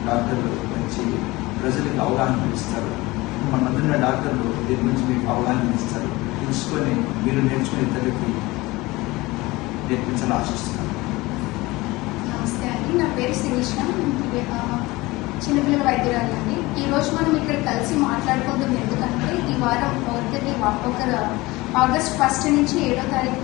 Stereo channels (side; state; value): right; quieter; 21.1 dB